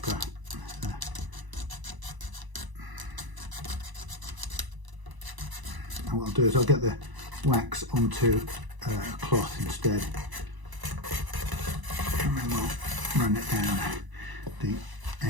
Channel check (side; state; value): left; late; 1.0 ms